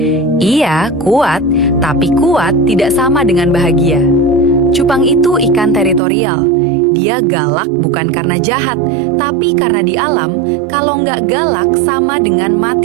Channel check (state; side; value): drops out; left; at 6.0 s